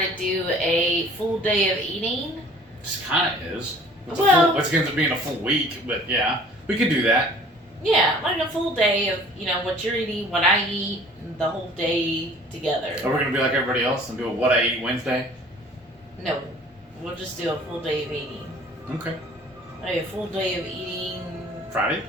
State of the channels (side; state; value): both; normal; correlation 0.50